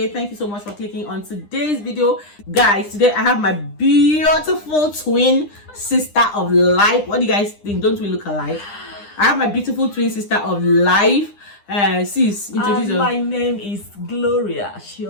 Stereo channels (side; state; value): right; late; 9.9 ms